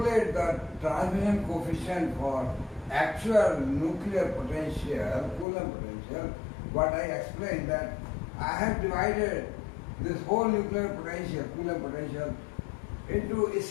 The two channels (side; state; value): right; drops out; at 5.5 s